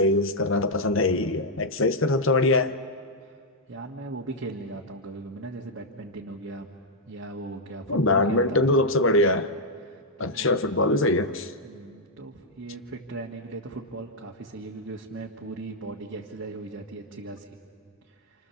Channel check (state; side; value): normal; both; correlation -0.04